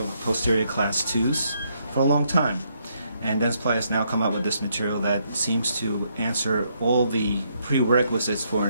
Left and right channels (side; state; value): both; inverted; correlation -0.74